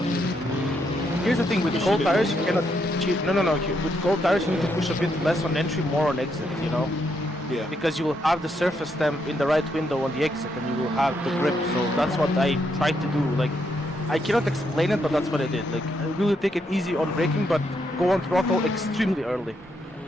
Here's the thing, with cold tires you cannot cheat. No. With cold tires you need to push a bit less on entry, more on exit, you know? Yeah. Because you will have the surface temp in the right window on the exit and you will have the grip, so that's what I tried to do. Like, I cannot explain it, but that's what I did. Like, I really take it easy on braking, but go on throttle extremely early.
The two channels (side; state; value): both; normal; correlation 0.77